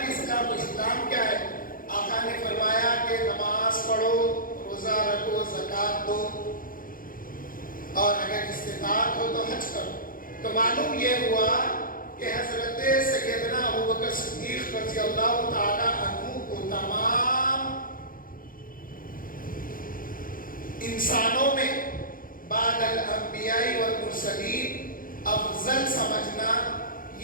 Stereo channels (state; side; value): late; right; 0.41 ms